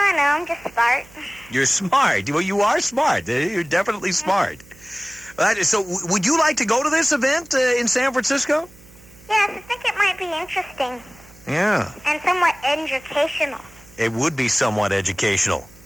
don't know, I'm just smart. You're smart. Well, you are smart. You're definitely smart. So, would you like to go to this event in San Francisco? Yes, I think it might be interesting. Yeah. And somewhat educational. It would be somewhat educational.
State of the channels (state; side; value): noise; right; hum, 25 dB below the sound